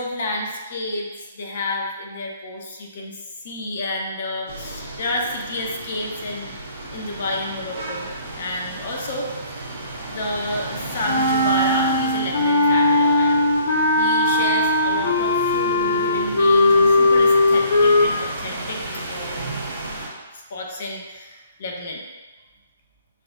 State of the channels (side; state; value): both; inverted; correlation -0.61